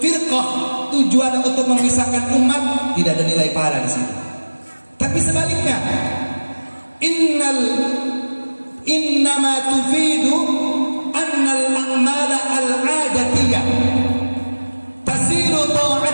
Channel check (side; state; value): both; inverted; correlation -1.00